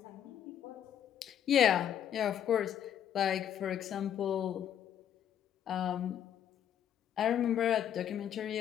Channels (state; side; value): quieter; right; 9.7 dB